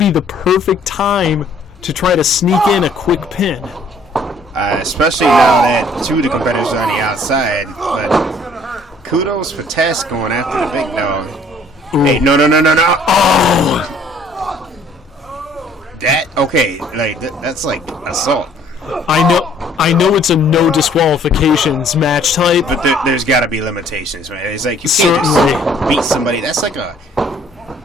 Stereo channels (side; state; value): both; normal; correlation 0.59